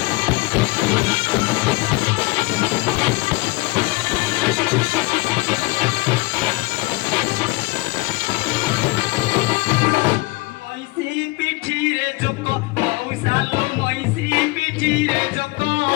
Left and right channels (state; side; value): quieter; right; 23.3 dB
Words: ମଇଁଷି ପିଠିରେ ଜୋକ ମଉସାଲୋ ମଇଁଷି ପିଠିରେ ଜୋକ